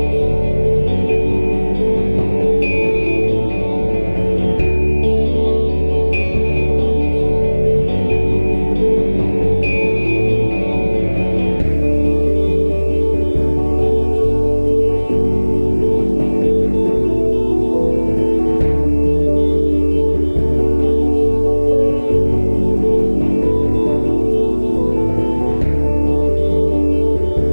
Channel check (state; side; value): inverted; both; correlation -1.00